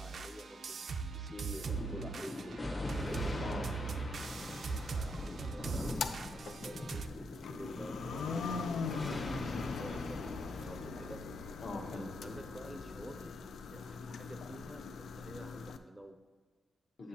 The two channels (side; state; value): both; normal; correlation 0.77